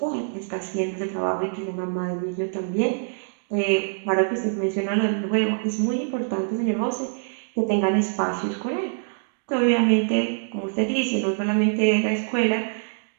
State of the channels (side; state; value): left; silent; 62 dB below the other